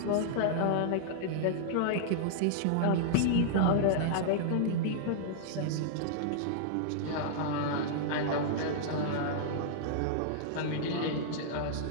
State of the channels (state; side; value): different; both; correlation -0.01